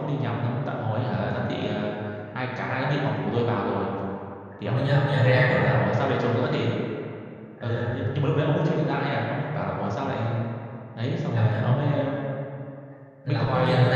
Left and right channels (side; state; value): both; identical; correlation 1.00